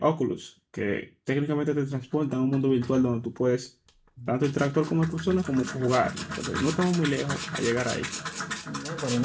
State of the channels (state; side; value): identical; both; correlation 1.00